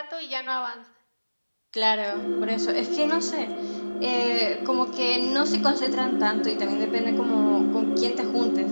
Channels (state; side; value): inverted; both; correlation -1.00